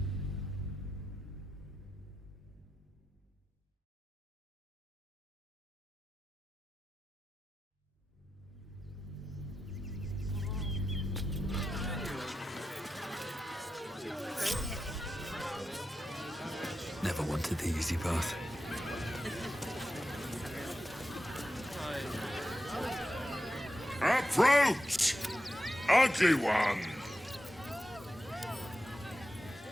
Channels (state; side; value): normal; both; correlation 0.90